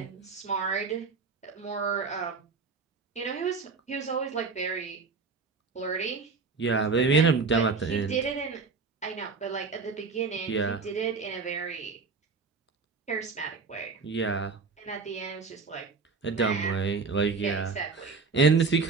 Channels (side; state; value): left; quieter; 4.7 dB